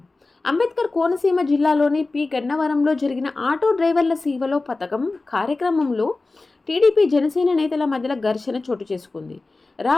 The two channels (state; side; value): quieter; right; 3.4 dB